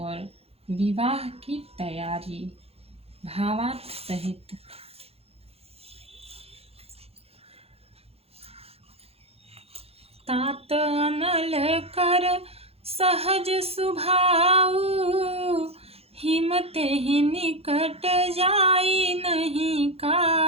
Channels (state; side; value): late; left; 0.29 ms